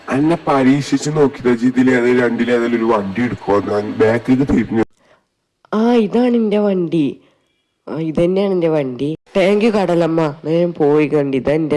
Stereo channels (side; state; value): both; identical; correlation 1.00